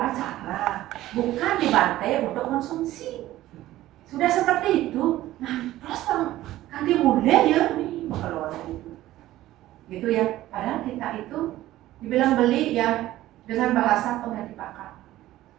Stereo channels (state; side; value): quieter; left; 15.2 dB